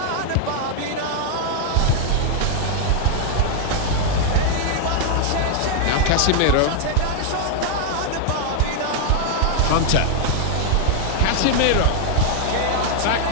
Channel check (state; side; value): different; both; correlation 0.00